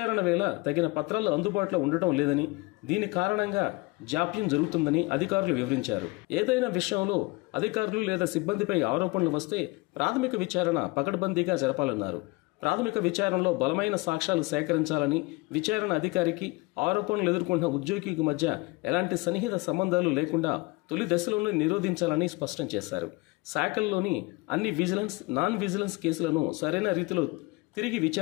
వేళ తగిన పత్రాలు అందుబాటులో ఉండటం లేదని, దీని కారణంగా జాప్యం జరుగుతుందని అధికారులు వివరించారు. ఏదైనా విషయంలో అధికారులు లేదా సిబ్బందిపై ఆరోపణలు వస్తే ప్రాథమిక విచారణ పకడ్బందీగా జరపాలన్నారు. ప్రాథమిక విచారణలో బలమైన సాక్ష్యాలు సేకరించాలని, విచారణ అధికారికి ఆరోపణలు ఎదుర్కొంటున్న ఉద్యోగికి మధ్య ఎలాంటి సన్నిహిత సంబంధాలు లేకుండా తొలి దశలోనే నిరోధించాలని స్పష్టం చేశారు. శాఖల్లోని అన్ని విజిలెన్స్, నాన్ విజిలెన్స్ కేసులను సరైన రీతిలో తిరిగి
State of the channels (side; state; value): right; quieter; 24.5 dB